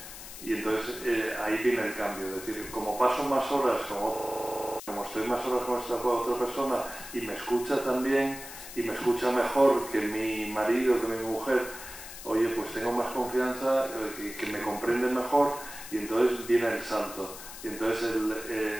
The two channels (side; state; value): left; noise; hiss, 13 dB below the sound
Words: Y entonces ahí viene el cambio, es decir, como paso más horas como estoy más horas con esta otra persona y me escucha también y me escucha mejor que mi marido, que mi mujer, oye, pues tengo más confianza, que me comprende mejor y entonces viene el salto. Y entonces